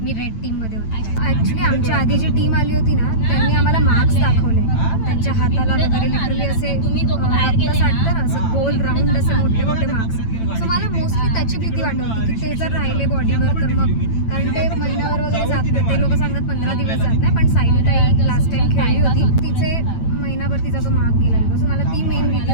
मी रेड टीम मध्ये होते. ऍक्च्युली आमच्या आधी जी टीम आली होती ना, त्यांनी आम्हाला मार्क्स दाखवले. त्यांच्या हाताला वगैरे लिटरली असे रक्त साठतं ना, असं गोल राऊंड असे मोठे मार्क्स. सो मला मोस्टली त्याची भीती वाटत होती की ते जर राहिले बॉडीवर तर मग, कारण ते महिन्यावर वगैरे जात नाही. ते लोक सांगतात 15 दिवस जात नाही, पण सायली ताई लास्ट टाइम खेळली होती, तिचे महिनाभर तिचा तो मार्क गेला होता. सो मला ती मेन भीती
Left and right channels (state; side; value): late; right; 9.0 ms